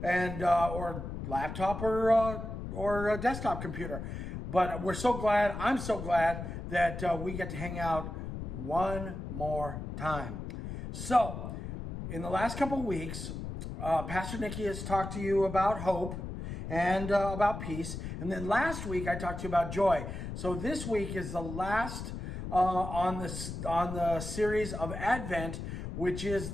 and or laptop or a desktop computer. But we're so glad, I'm so glad that we get to hang out one more time. So, in the last couple of weeks, Pastor Nikki has talked to you about hope and about peace. And then last week I talked to you about joy. So this week is the last on the series of Advent, which is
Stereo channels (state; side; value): noise; left; rumble, 7 dB below the sound